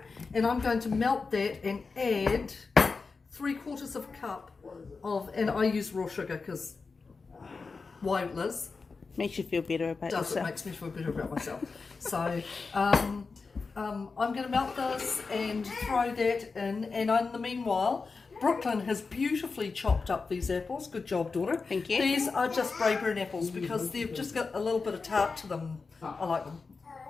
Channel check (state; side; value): quieter; right; 4.5 dB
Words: and I'm going to melt that and add 3/4 of a cup of, and I use raw sugar because why, Liz? Makes you feel better about yourself. It makes me feel better about myself. So I'm going to melt this and throw that in, and in the meanwhile, Brooke-Lyn has beautifully chopped up these apples. Good job, daughter. Thank you. These are just Braeburn apples because they've just got a little bit of tart to them. I like them.